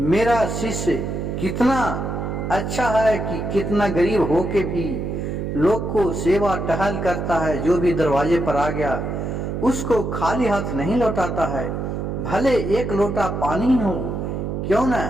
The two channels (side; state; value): right; noise; hum, 3 dB below the sound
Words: शिष्य कितना अच्छा है कि कितना गरीब होके भी लोग को सेवा टहल करता है, जो भी दरवाजे पर आ गया उसको खाली हाथ नहीं लौटाता है, भले 1 लोटा पानी हो क्यों ना,